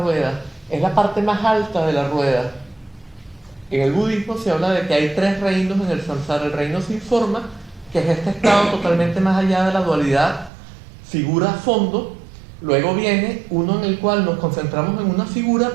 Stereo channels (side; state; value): left; drops out; at 10.5 s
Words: Es la parte más alta de la rueda. En el budismo se habla de que hay tres reinos en el samsara. El reino sin forma, que es este estado totalmente más allá de la dualidad figura-fondo. Luego viene uno en el cual nos concentramos en una figura,